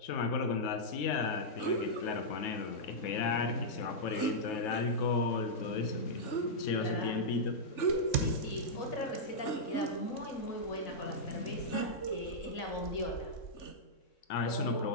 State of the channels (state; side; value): late; right; 3.7 ms